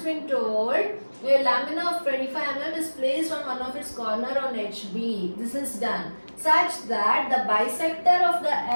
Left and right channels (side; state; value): both; inverted; correlation -1.00